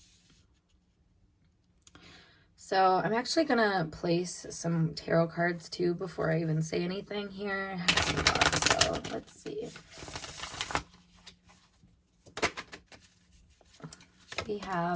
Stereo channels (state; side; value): identical; both; correlation 1.00